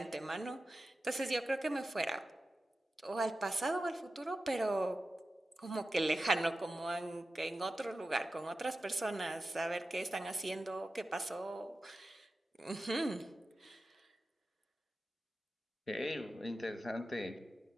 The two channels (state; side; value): normal; both; correlation 0.93